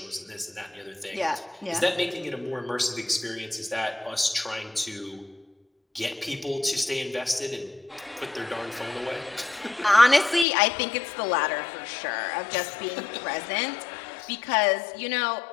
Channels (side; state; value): right; drops out; at 10.5 s